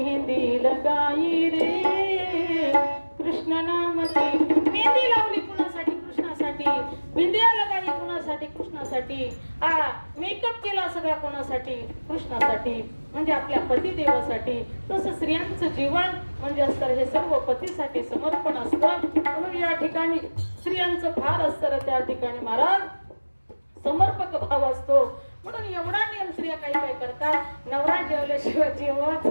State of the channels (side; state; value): both; inverted; correlation -1.00